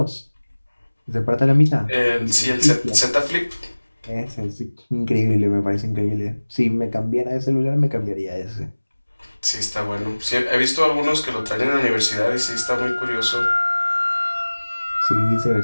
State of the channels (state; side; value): inverted; both; correlation -1.00